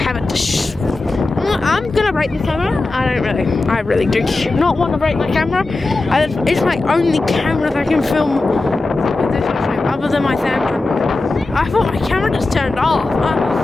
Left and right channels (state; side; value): quieter; right; 3.3 dB